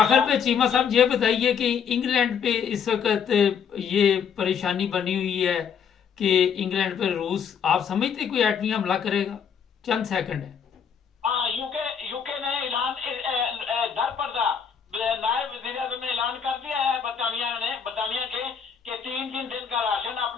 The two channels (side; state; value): right; quieter; 7.2 dB